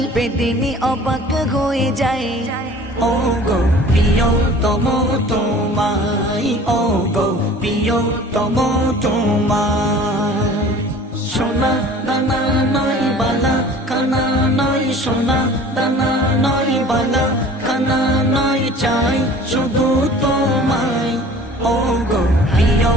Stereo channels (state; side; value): normal; both; correlation 0.46